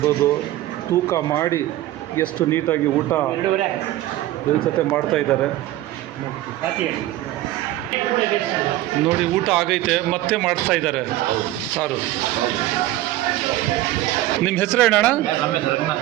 ತೂಕ ಮಾಡಿ ಎಷ್ಟು ನೀಟಾಗಿ ಊಟ ಜೊತೆ ಮಾಡ್ತಾ ಇದ್ದಾರೆ. ನೋಡಿ, ಊಟ ಆಗೈತೆ, ಮತ್ತೆ ಮಾಡಿಸ್ತಾ ಇದ್ದಾರೆ ಸಾರು. ನಿಮ್ಮ ಹೆಸರು ಏನಣ್ಣ?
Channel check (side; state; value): left; quieter; 15.4 dB